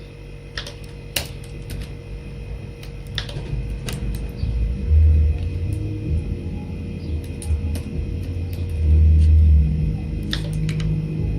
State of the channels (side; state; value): both; identical; correlation 1.00